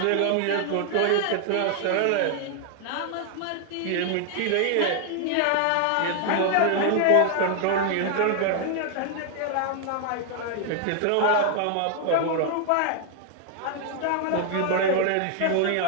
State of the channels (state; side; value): different; both; correlation 0.00